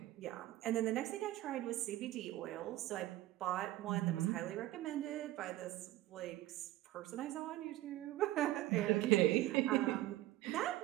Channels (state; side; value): quieter; left; 16.0 dB